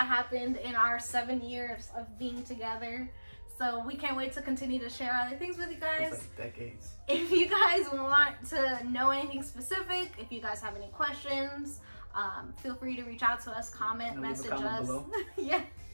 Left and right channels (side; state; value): both; inverted; correlation -1.00